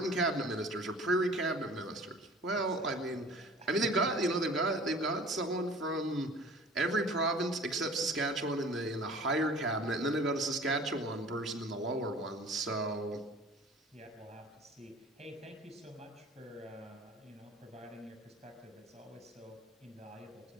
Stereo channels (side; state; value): both; normal; correlation 0.45